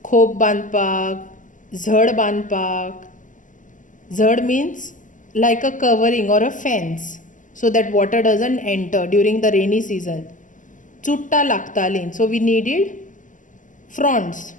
khop bandpak, zhad bandpak. Zhad means like a covering or a fence so that water doesn't enter during the rainy season. Chutta lagtalin, so we needed fronds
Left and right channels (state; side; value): late; right; 0.37 ms